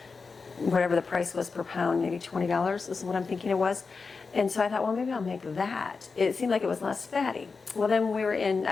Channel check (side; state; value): right; quieter; 4.7 dB